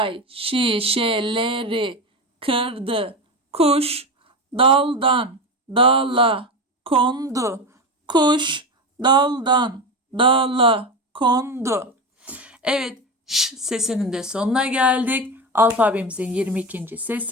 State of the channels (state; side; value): normal; both; correlation 0.21